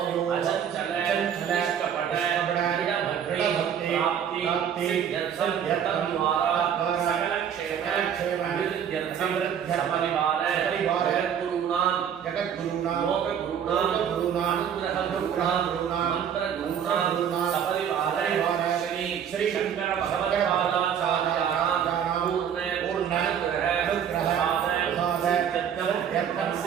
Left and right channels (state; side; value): quieter; left; 8.4 dB